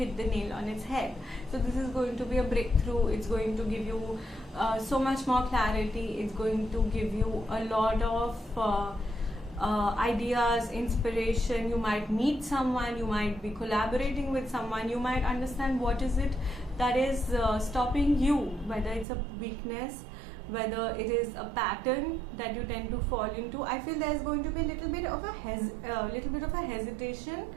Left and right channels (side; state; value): left; drops out; at 19.1 s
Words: the nail on its head? So this is going to be a breakthrough. It's going to give you so much more clarity. It's going to give you a lot of ideas, inspiration. You might meet someone, you might be collaborating with someone, you might understand what is it that is stopping you, whether it's a weakness, whether it is a pattern that you tend to fall into. I feel there's going to be a little bit of a hesitation,